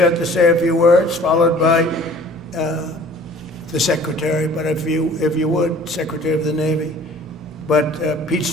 to say a few words, followed by the Secretary, but if you would, Secretary of the Navy. But Pete's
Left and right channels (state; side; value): noise; right; hum, 26 dB below the sound